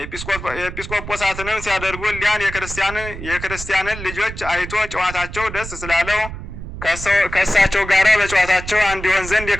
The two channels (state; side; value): noise; right; rumble, 10 dB below the sound